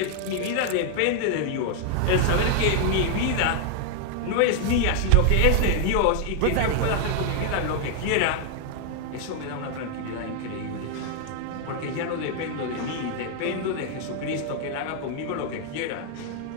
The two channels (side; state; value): both; different; correlation 0.00